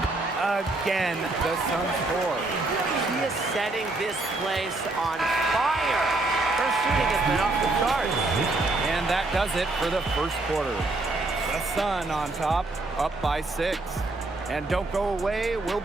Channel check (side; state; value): left; quieter; 3.0 dB